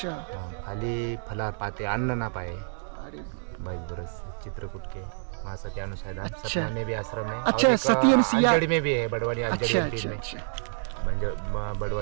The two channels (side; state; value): left; silent; digital silence